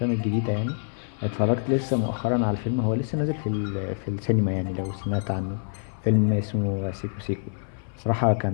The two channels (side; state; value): right; silent; 56 dB below the other